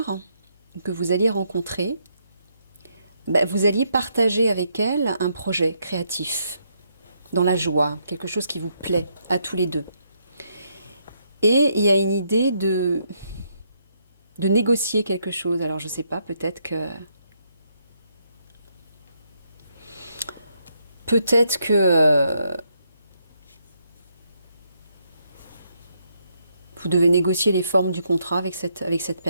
que vous alliez rencontrer, vous alliez partager avec elle un projet créatif, dans la joie, quelque chose qui vous plaît à tous les deux. Et il y a une idée de négocier quelque chose. Alors je ne sais pas, peut-être que vous devez négocier les formes du contrat avec cette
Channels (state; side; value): inverted; both; correlation -0.76